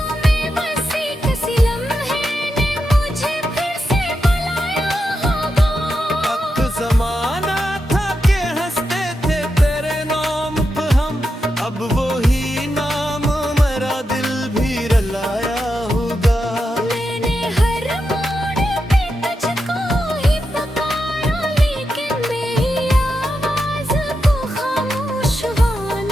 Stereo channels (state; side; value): normal; both; correlation 0.87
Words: में बसी, किसी लम्हे ने मुझे फिर से बुलाया होगा। वक्त ज़माना था कि हंसते थे तेरे नाम पे हम, अब वही नाम मेरा दिल भी रलाया होगा। मैंने हर मोड़ पे तुझको ही पुकारा, लेकिन मेरी आवाज़ को खामोश